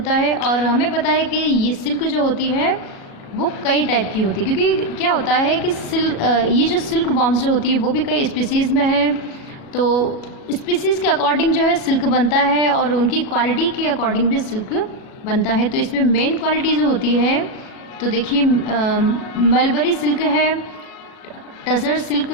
है। और हमें पता है कि ये सिल्क जो होती है वो कई टाइप की होती है, क्योंकि क्या होता है कि ये जो सिल्क वॉर्म्स जो होती है वो भी कई स्पीसीज़ में है, तो स्पीसीज़ के अकॉर्डिंग जो है सिल्क बनता है, और उनकी क्वालिटी के अकॉर्डिंग भी सिल्क बनता है। तो इसमें मेन क्वालिटी जो होती है, तो देखिए मलबरी सिल्क है, टसर सिल्क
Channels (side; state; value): right; late; 37 ms